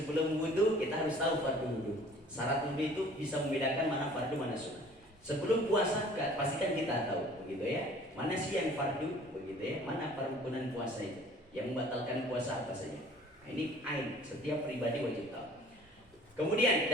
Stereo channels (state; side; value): normal; both; correlation 0.51